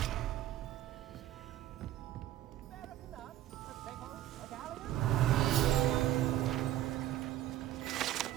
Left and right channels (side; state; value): left; quieter; 13.4 dB